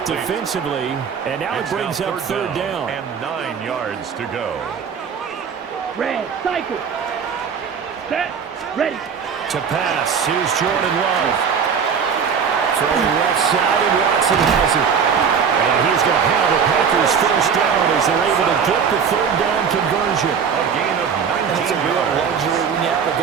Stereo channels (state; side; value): quieter; left; 6.7 dB